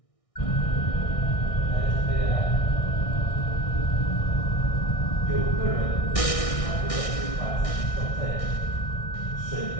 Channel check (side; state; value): right; late; 1.6 ms